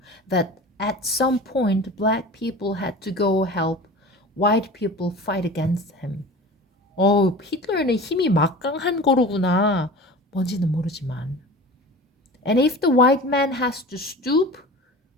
that at some point black people had to go help white people fight against him. 히틀러는 힘이 막강한 거로구나. 뭔지는 모르지만. And if the white man has to stoop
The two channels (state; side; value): normal; both; correlation 0.36